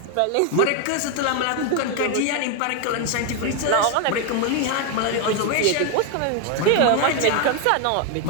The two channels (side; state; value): both; different; correlation 0.01